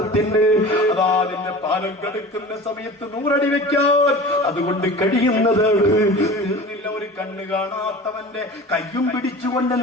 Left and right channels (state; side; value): normal; both; correlation 0.37